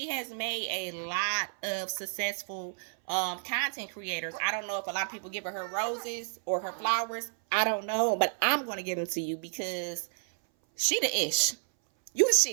has made a lot of successful content creators. I don't know if a lot of people give her roses or her flowers. I don't know, but I'm gonna give them to you because she the ish. You the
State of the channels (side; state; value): left; silent; 57 dB below the other